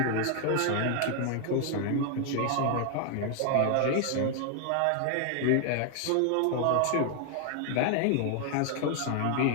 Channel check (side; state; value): both; different; correlation 0.00